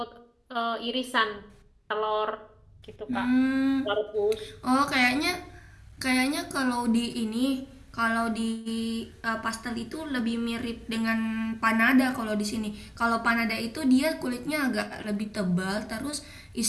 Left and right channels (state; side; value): identical; both; correlation 1.00